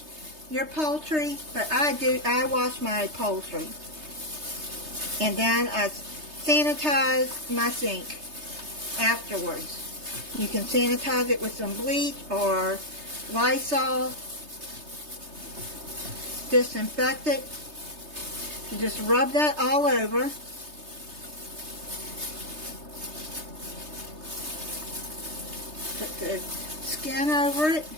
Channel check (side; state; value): left; late; 3.3 ms